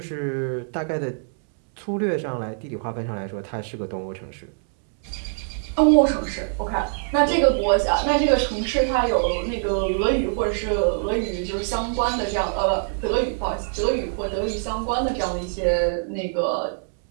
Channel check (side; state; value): left; silent; 62 dB below the other